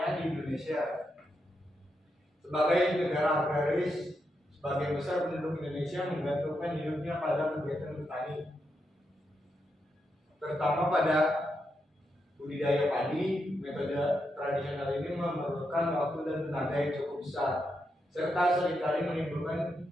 di Indonesia. Sebagai negara agraris, sebagian besar penduduk Indonesia menggantungkan hidupnya pada kegiatan bertani, terutama pada budidaya padi. Metode tradisional ini memerlukan waktu dan tenaga yang cukup besar, serta seringkali menimbulkan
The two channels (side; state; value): both; normal; correlation 0.84